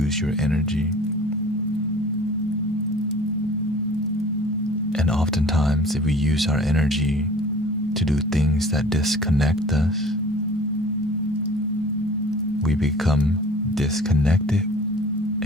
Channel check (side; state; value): both; normal; correlation 0.46